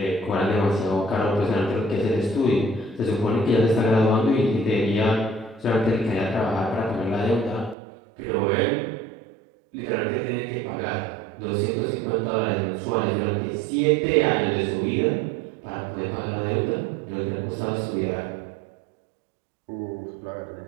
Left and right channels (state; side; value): drops out; left; at 7.8 s